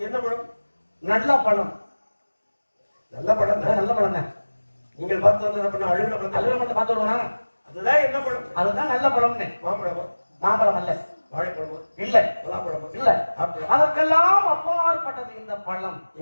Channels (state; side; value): inverted; both; correlation -1.00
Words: என்ன பழம்? நல்ல பழம். நல்ல பழம் தான். நல்ல பழம் தான். நீங்கள் பார்த்து வந்தது அழுகிற பழம். அழுகிற பழத்தை பார்த்து வருவானா? அதுதான் என்ன பழம்? அதுதான் நல்ல பழம்னு. மாம்பழமா? மாம்பழம் அல்ல. வாழைப்பழமா? இல்ல. பலாப்பழமா? இல்ல. அதற்கெல்லாம் அப்பாற்பட்டது இந்த பழம்.